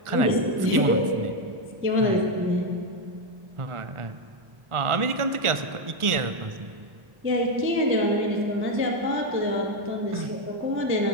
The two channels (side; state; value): left; late; 1.4 ms